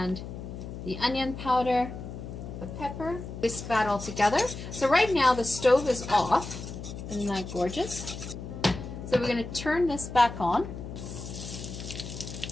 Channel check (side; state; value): left; noise; hum, 9 dB below the sound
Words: the onion powder, the pepper. Whisk that all together. So right now the stove is off. Isn't that gorgeous? So we're going to turn this back on.